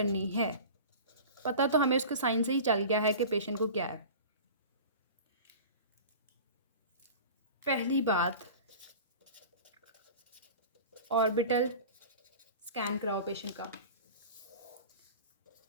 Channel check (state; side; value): inverted; both; correlation -0.37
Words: है, पता तो हमें उसके साइन से ही चल गया है कि पेशेंट को क्या है। पहली बात, ऑर्बिटल स्कैन कराओ पेशेंट का।